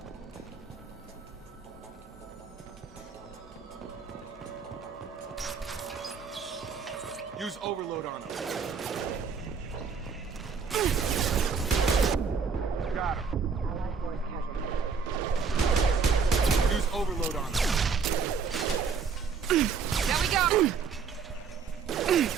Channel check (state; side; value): quieter; left; 5.7 dB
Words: Use overload on them. Got him. Use overload on them. There we go!